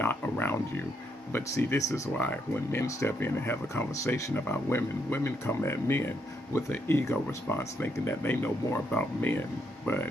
around you. But see, this is why when men step in and have a conversation about women, women come at men with an ego response, thinking that they know more about men. But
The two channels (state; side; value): normal; both; correlation 0.76